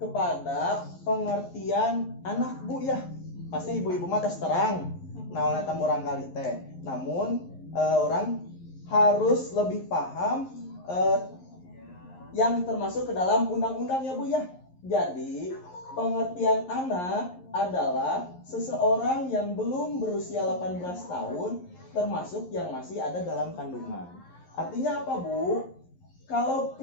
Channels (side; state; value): right; late; 11 ms